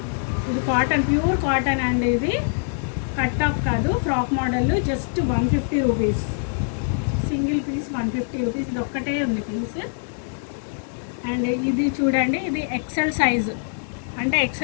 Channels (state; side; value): silent; right; 60 dB below the other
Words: ఇది కాటన్, ప్యూర్ కాటన్ అండి. ఇది కట్ టాప్ కాదు, frock model. Just 150 rupees, single piece 150 rupees. ఇది ఒక్కటే ఉంది పీస్. అండ్ ఇది చూడండి, ఇది ఎక్సెల్ సైజు. అంటే